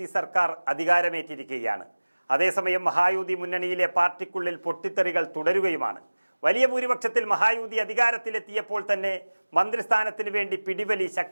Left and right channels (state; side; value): inverted; both; correlation -1.00